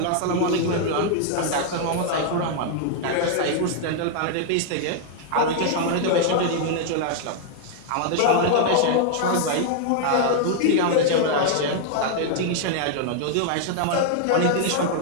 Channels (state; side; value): different; both; correlation 0.00